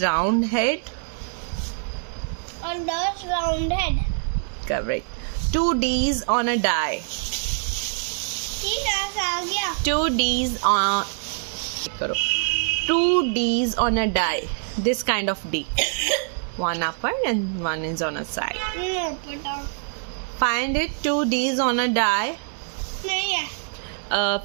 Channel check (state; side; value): silent; left; digital silence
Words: round head. On doll's round head. Correct. 2 D's on a die. 2 D's on. 2 D's on a die. This kind of D. One upper and one is on a side. Find it. 2 D's on a die.